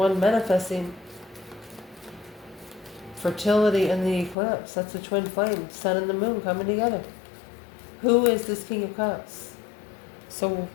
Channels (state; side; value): drops out; right; at 4.4 s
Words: manifesting fertility in the eclipse. That's the twin flame, sun and the moon coming together. Who is this King of Cups? So,